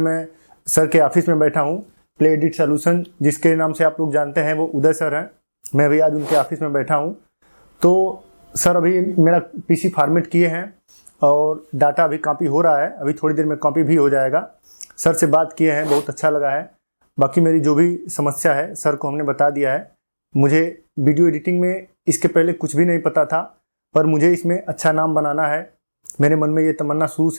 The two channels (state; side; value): inverted; both; correlation -1.00